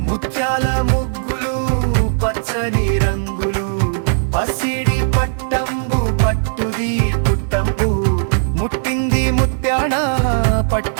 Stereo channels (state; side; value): silent; left; digital silence